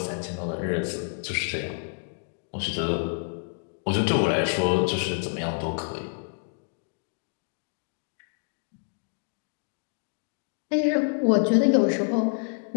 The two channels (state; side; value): silent; right; 59 dB below the other